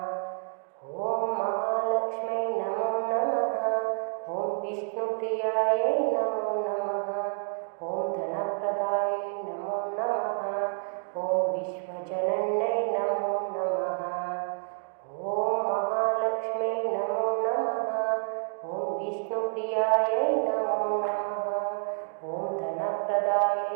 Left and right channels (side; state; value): left; silent; digital silence